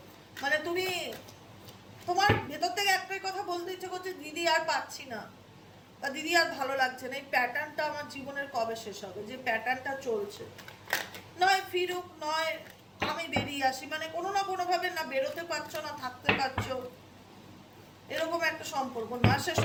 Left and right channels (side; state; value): both; identical; correlation 1.00